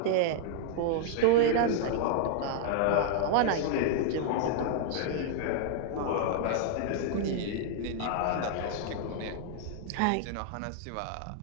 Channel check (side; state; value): both; different; correlation 0.00